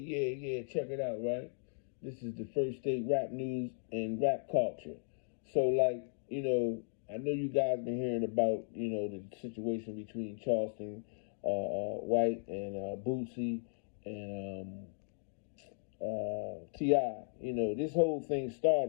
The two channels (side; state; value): right; silent; digital silence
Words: Check it out, right? This is the first state rap news and rap culture. So, like, I know you guys been hearing about, the situation between Charleston White and Boosie and T.I. This whole thing